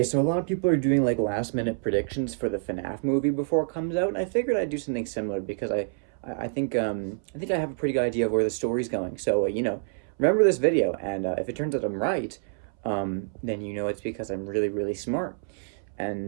so a lot of people are doing like last minute predictions for the FNAF movie before it comes out, and I figured I'd do something similar because I think I have a pretty good idea of where the story's going. So remember this video, and if it turns out I'm right, then you know it's because I'm really really smart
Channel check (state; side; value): silent; left; 60 dB below the other